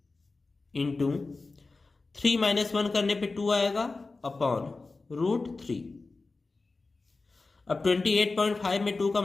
इंटू 3 - 1 करने पे 2 आएगा अपॉन √3। अब 28.5 में 2 का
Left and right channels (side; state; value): right; quieter; 3.7 dB